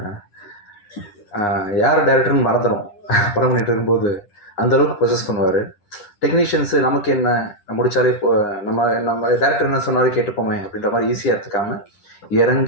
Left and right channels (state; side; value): late; right; 10 ms